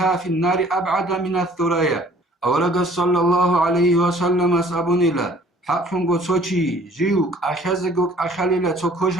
في النار أبعد من الثريا. أورغ صلى الله عليه وسلم سابونيلا حقنغو سوچي جيوك أخازغوك أخاليلا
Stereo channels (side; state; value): both; normal; correlation 0.54